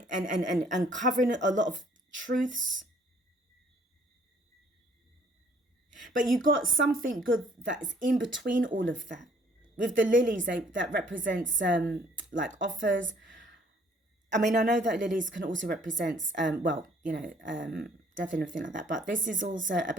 uncovering a lot of truths. But you got something good that's in between all of that. With the lilies, that represents like offers. I mean, I know that lilies can also represent, well, you know, death and everything like that. But this is also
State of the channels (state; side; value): normal; both; correlation 0.60